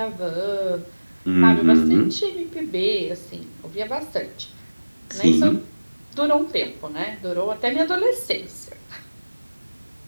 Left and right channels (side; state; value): both; inverted; correlation -1.00